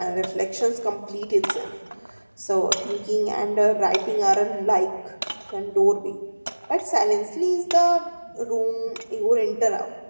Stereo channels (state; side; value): inverted; both; correlation -1.00